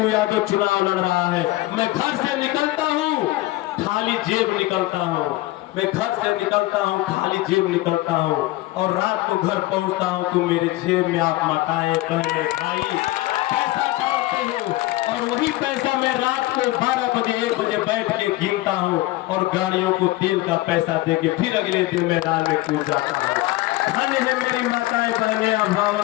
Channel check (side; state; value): right; quieter; 18.3 dB